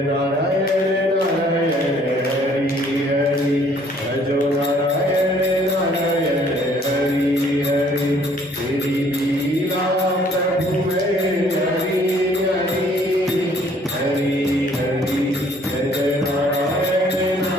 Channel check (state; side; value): normal; both; correlation 0.60